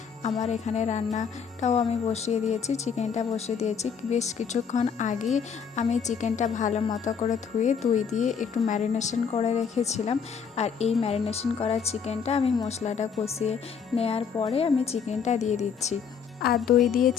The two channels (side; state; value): right; quieter; 6.7 dB